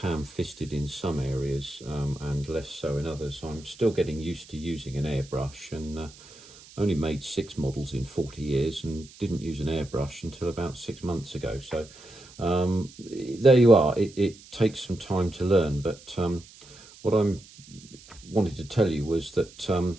in some areas and less so in others. I'm still getting used to using an airbrush, and only made 6 models in 40 years and didn't use an airbrush until about 6 months ago. So there you are. It takes some time to learn, but what I wanted to tell you was that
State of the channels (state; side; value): noise; right; hiss, 21 dB below the sound